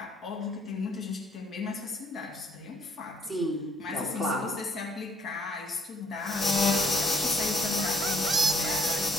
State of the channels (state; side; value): normal; both; correlation 0.61